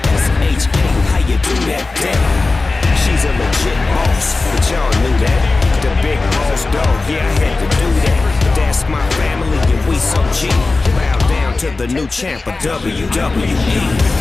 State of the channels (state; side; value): quieter; right; 3.6 dB